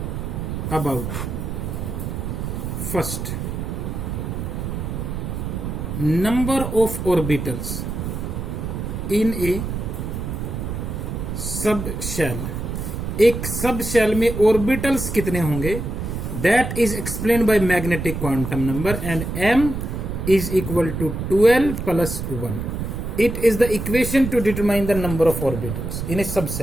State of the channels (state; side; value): noise; right; rumble, 4 dB below the sound